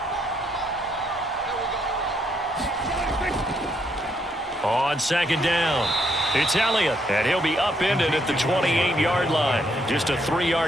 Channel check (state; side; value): normal; both; correlation 0.74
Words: On second down, it's Elliott, and he'll be upended at the 28-yard line. Just a